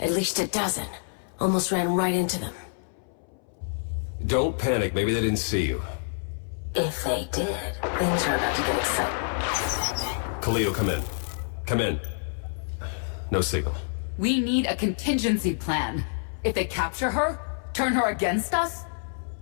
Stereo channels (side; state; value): right; silent; 60 dB below the other